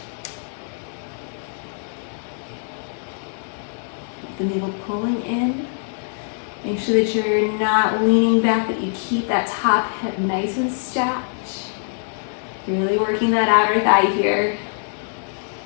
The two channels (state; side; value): silent; right; 64 dB below the other